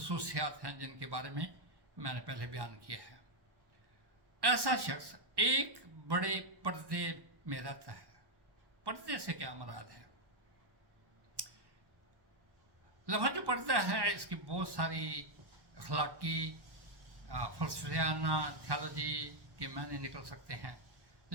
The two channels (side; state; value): left; late; 1.1 ms